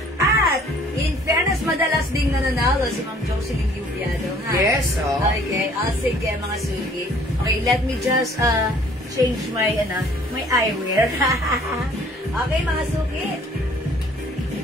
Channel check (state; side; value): normal; both; correlation 0.56